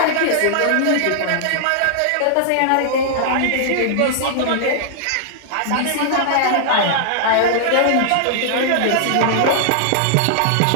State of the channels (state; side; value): different; both; correlation -0.01